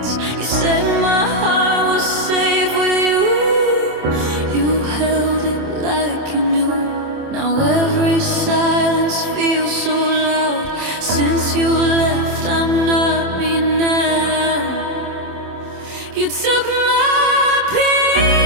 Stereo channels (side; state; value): left; late; 27 ms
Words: You said my heart was safe with you. You held it like you knew. Now every silence feels so loud. Since you left, I'm not me now. You took my